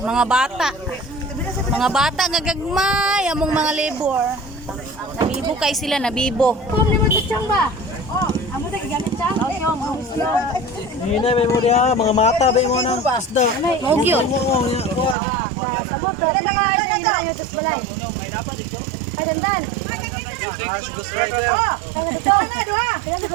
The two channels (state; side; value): drops out; left; at 15.2 s